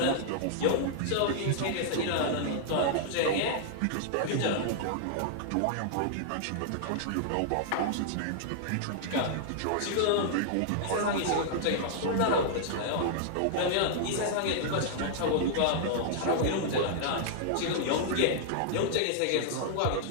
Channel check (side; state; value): both; different; correlation -0.01